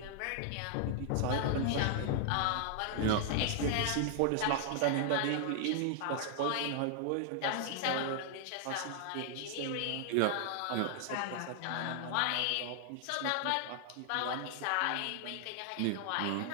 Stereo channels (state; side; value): different; both; correlation -0.01